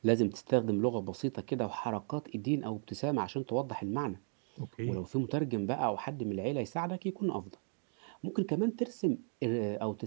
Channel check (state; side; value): silent; left; 54 dB below the other